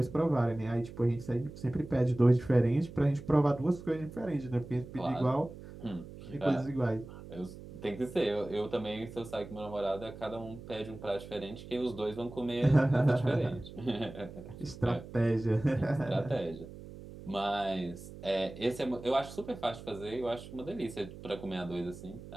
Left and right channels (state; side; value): noise; right; hum, 14 dB below the sound